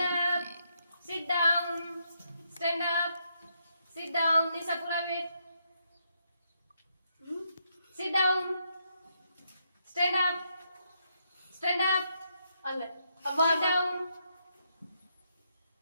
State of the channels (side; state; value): both; inverted; correlation -0.78